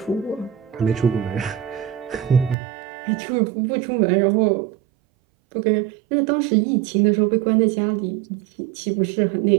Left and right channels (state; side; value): drops out; left; at 2.6 s